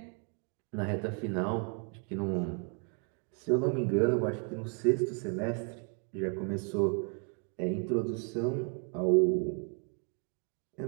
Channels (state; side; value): quieter; left; 37.6 dB